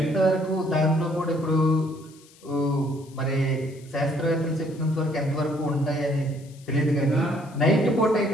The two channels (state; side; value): noise; left; hiss, 26 dB below the sound